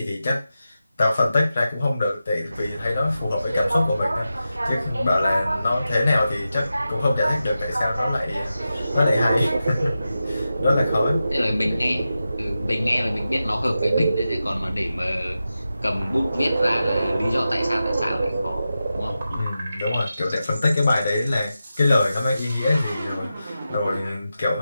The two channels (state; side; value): inverted; both; correlation -0.91